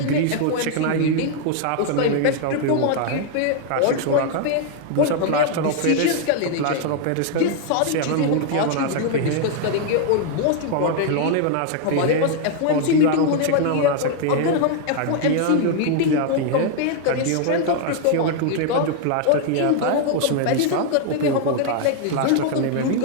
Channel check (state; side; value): different; both; correlation 0.00